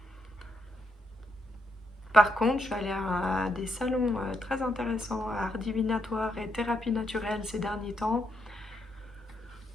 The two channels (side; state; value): both; normal; correlation 0.79